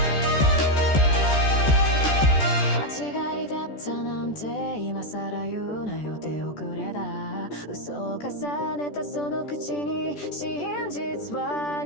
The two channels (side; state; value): right; late; 14 ms